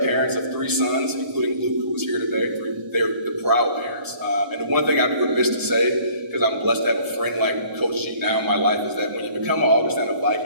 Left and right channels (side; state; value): left; late; 1.0 ms